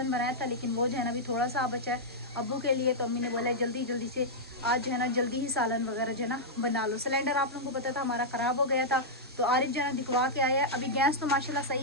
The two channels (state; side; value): normal; both; correlation -0.07